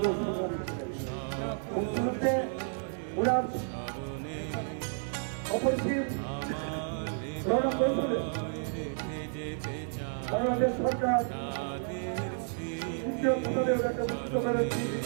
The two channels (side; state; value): left; silent; 57 dB below the other